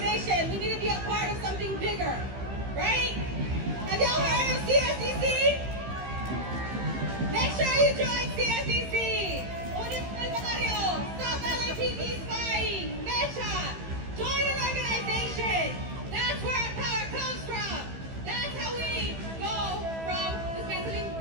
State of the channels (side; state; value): left; late; 15 ms